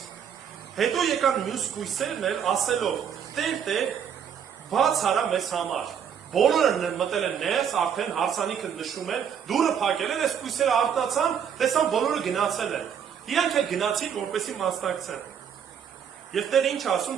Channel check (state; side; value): quieter; left; 8.0 dB